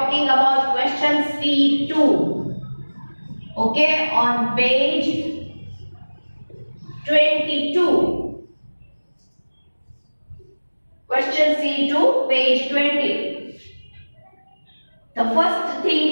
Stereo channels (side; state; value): both; inverted; correlation -1.00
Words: about question C2. Okay, on page 22. Question C2, page 20. The first